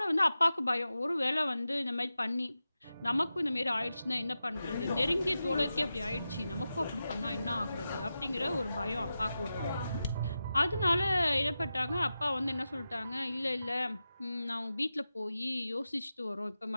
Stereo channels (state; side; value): inverted; both; correlation -0.92